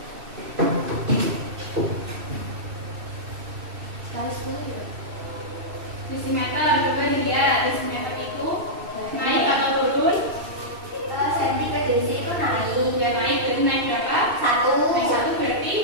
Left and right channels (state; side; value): late; left; 2.6 ms